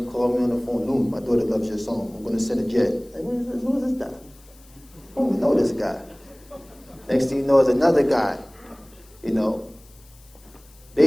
call me on the phone. "Loon, my daughter loves your song. I'm going to send a jet." Like, who is this guy? I don't know this guy. Next thing you know is another guy,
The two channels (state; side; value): noise; left; hiss, 27 dB below the sound